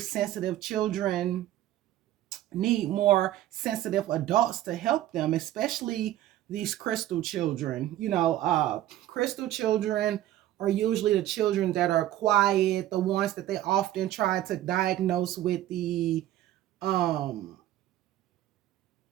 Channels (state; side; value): quieter; left; 13.6 dB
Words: sensitive children need more sensitive adults to help them, especially these crystal children. Crystal children are usually the children that are quiet, the ones that they often try to diagnose with the